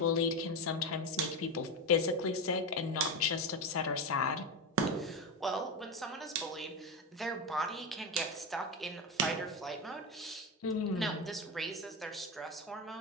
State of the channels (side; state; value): both; normal; correlation 0.16